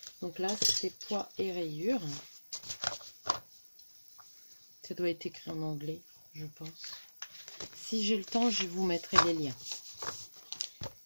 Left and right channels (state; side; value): inverted; both; correlation -1.00